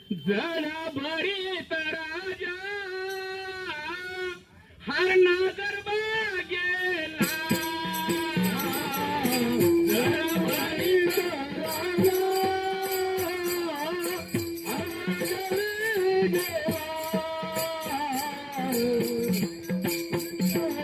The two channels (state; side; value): identical; both; correlation 1.00